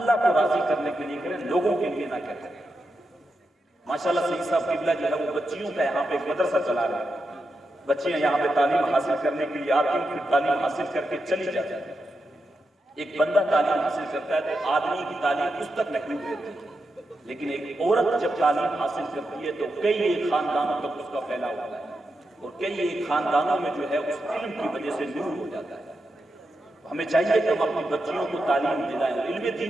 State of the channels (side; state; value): both; normal; correlation 0.87